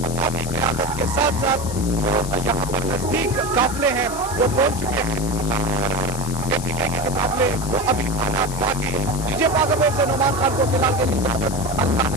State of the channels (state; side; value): noise; left; hiss, 11 dB below the sound